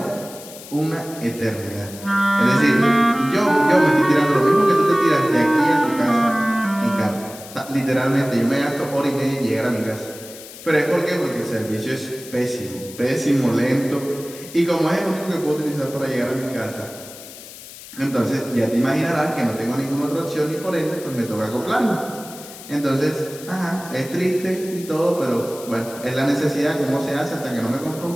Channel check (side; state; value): left; noise; hiss, 16 dB below the sound